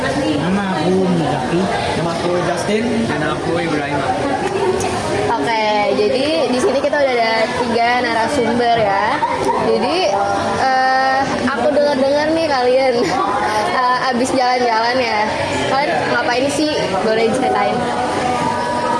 Nama aku Muzaki. Nama aku Justin. Dan aku Ibrahim. Oke, jadi di sini kita udah ada 3 narasumber ya. Jadi aku dengar nih kalian abis jalan-jalan ya. Kalian ngapain sih? Boleh diceritain?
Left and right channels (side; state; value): both; identical; correlation 1.00